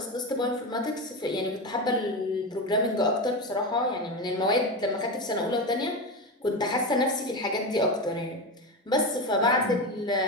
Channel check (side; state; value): both; normal; correlation 0.18